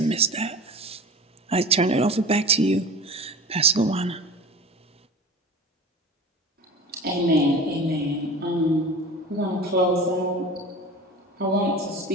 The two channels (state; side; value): normal; both; correlation 0.36